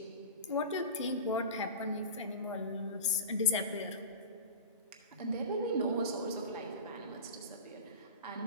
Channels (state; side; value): inverted; both; correlation -0.30